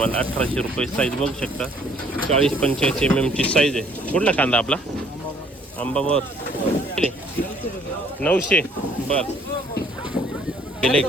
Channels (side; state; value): both; normal; correlation 0.61